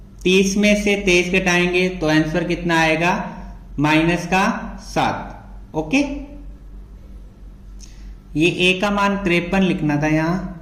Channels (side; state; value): both; identical; correlation 1.00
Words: 30 में से 23 घटाएंगे तो आंसर कितना आएगा, माइनस का 7। ओके, ये a का मान 53 लिखना था यहां।